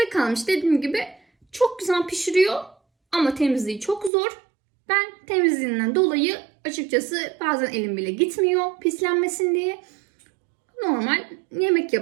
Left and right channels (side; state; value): left; drops out; at 4.1 s